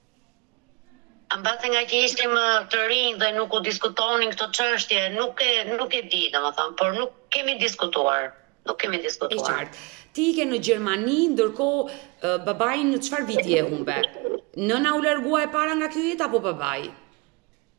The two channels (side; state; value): left; quieter; 28.4 dB